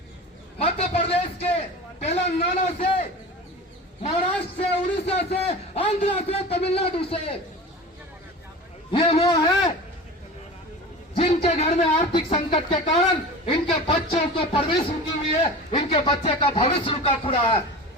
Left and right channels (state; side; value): normal; both; correlation 0.33